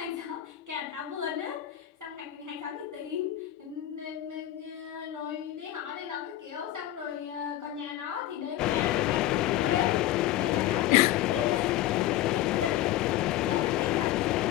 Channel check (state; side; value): quieter; right; 13.5 dB